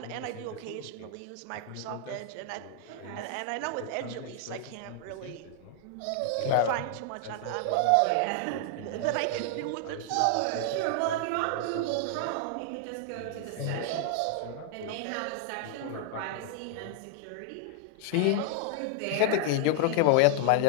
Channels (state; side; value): different; both; correlation 0.00